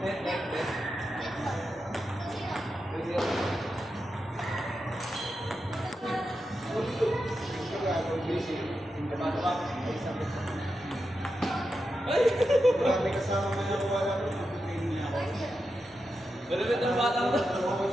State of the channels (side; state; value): both; normal; correlation 0.88